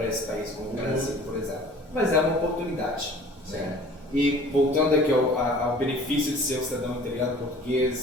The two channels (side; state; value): both; normal; correlation 0.48